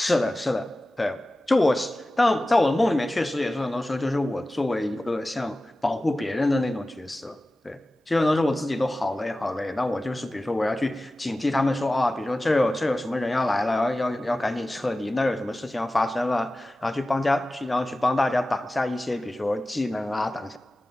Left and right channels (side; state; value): both; normal; correlation 0.96